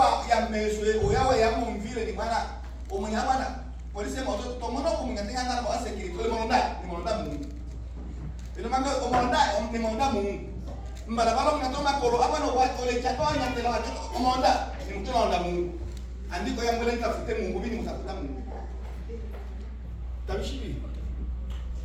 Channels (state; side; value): identical; both; correlation 1.00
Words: ya meswe oyawa ya mumvile ni bwana umunyabana polisi moto tomono kumungatenga ngana kwa security ole monda Mungu. Ile manga omonda Mungu. Mbala balo mnatoma kolo hapa no watu ole chatonya tela watu omonda ni mtu anaonda Mungu. Andiko yangu ile nitafute Mungu bini mtafuta Mungu. Tabishibi.